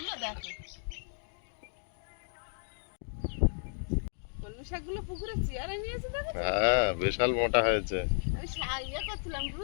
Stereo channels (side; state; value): right; silent; digital silence